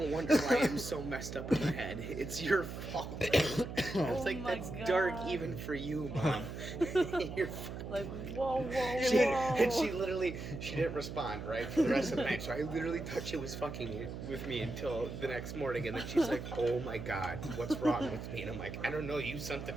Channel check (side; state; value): right; noise; hum, 8 dB below the sound